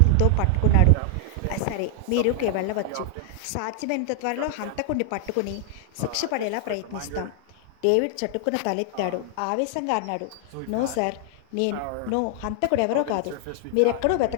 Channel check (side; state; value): both; different; correlation 0.00